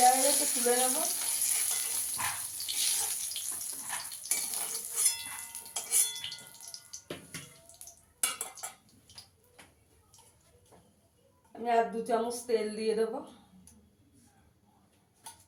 হয়ে গেছে, তুলে নেব। আমি আর 2 চামচ তেল দিয়ে দেবো।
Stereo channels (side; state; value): both; identical; correlation 1.00